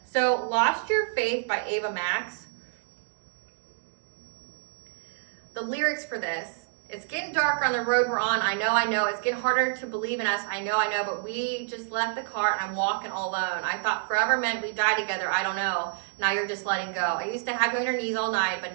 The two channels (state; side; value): silent; left; digital silence